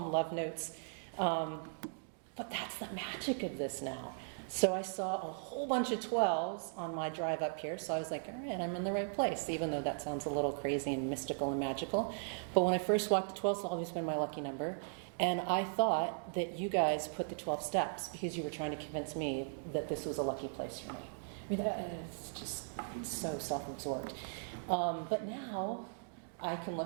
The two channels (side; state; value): left; silent; digital silence